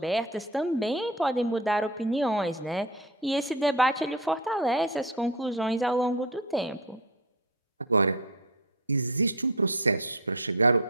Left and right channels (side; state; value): both; normal; correlation 0.18